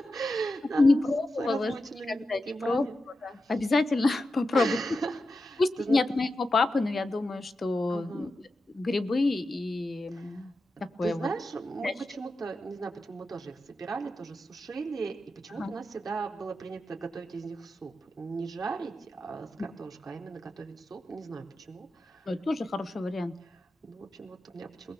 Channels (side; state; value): both; normal; correlation 0.90